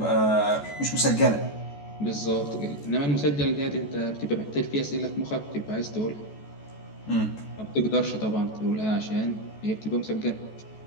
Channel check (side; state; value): right; late; 14 ms